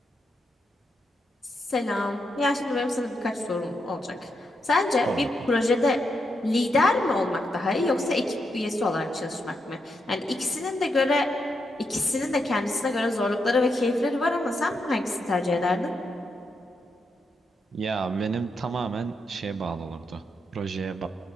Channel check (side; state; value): both; normal; correlation 0.83